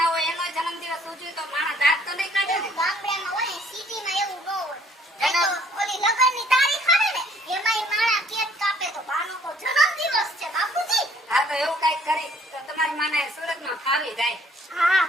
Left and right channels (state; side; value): normal; both; correlation 0.60